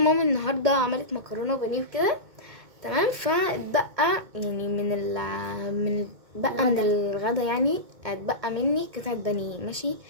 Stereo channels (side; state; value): left; late; 2.2 ms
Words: النهارده عملت مكرونه وبانيه وكده تمام، فاتبقى يعني من الغدا يعني اتبقى مني قطعه بانيه ماشي.